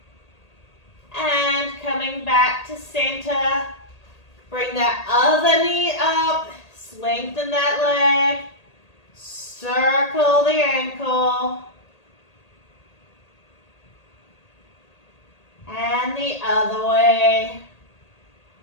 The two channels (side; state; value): right; late; 1.8 ms